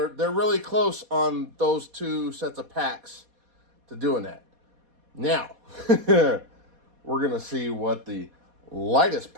really close on those two sets of packs to doing that. Now, we're going to see what the lightest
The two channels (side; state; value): left; late; 4.2 ms